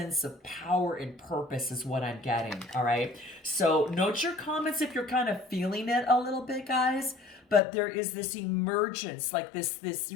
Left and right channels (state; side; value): drops out; right; at 7.6 s